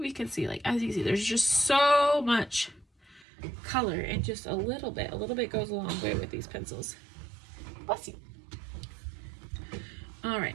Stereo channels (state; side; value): drops out; left; at 3.2 s